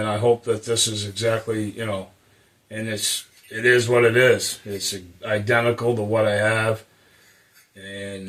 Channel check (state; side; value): identical; both; correlation 1.00